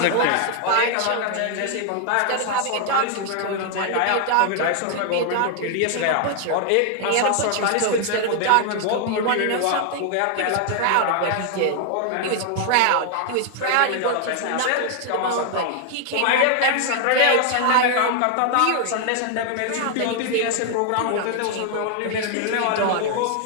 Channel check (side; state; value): both; different; correlation 0.00